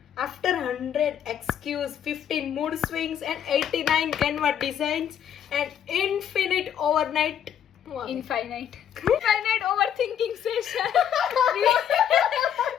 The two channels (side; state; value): right; quieter; 9.3 dB